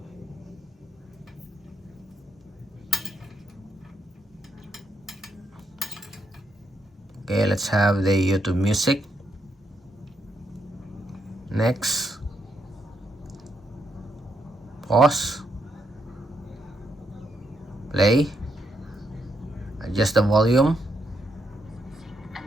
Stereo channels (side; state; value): both; normal; correlation 0.79